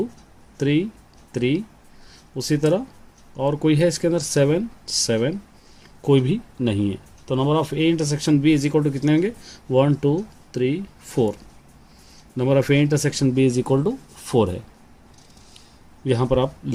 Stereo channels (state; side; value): identical; both; correlation 1.00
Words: 3 3, उसी तरह और कोई है इसके अंदर 7 7, कोई भी नहीं है, तो number of A intersection B is equal to कितने होंगे 1 2 3 4, number of A intersection B is equal to 4 है, यहाँ पर आप